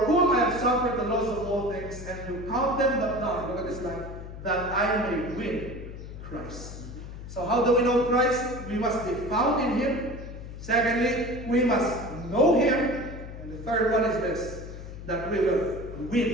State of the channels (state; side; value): noise; left; hum, 11 dB below the sound